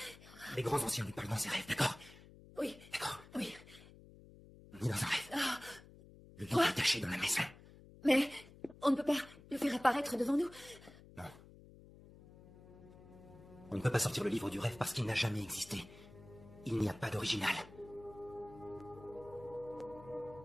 Les grands anciens lui parlent dans ses rêves, d'accord? Oui. D'accord. Oui. Ni dans un rêve. Ah. Le livre est caché dans la maison. Mais on ne peut pas le faire apparaître devant nous. Non. On ne peut pas sortir le livre du rêve parce qu'il n'a jamais existé. Il n'y a pas d'original.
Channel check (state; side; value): noise; left; hum, 20 dB below the sound